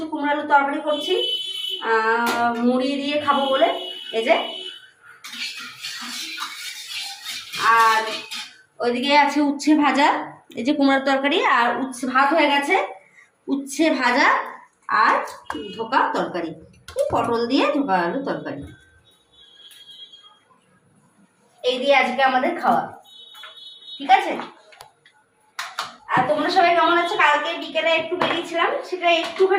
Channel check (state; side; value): identical; both; correlation 1.00